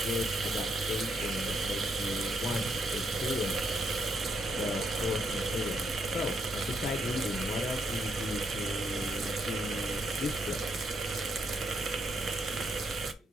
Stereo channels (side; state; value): both; normal; correlation 0.76